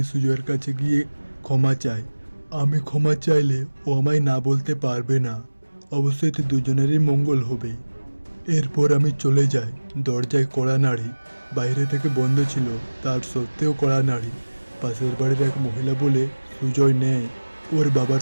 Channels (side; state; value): both; inverted; correlation -1.00